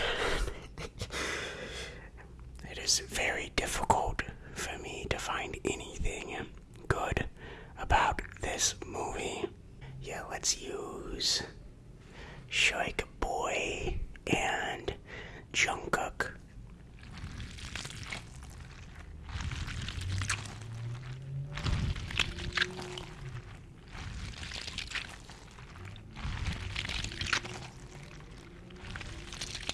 It is very difficult for me to find anything good about this movie. Yeah, let's use Shark Boy and Jungkook.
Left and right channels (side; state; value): both; identical; correlation 1.00